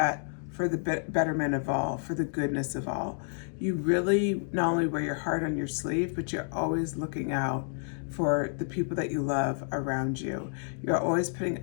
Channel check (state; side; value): silent; right; digital silence